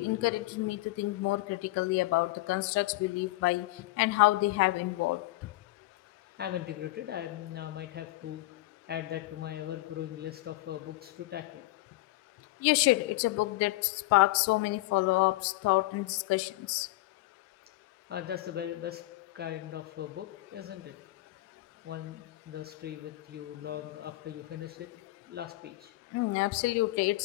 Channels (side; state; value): right; quieter; 18.8 dB